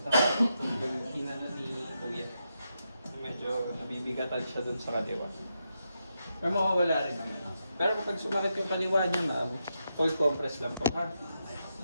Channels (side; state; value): both; inverted; correlation -0.84